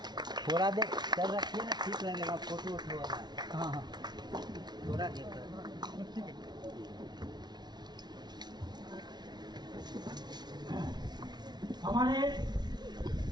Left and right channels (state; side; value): late; left; 0.20 ms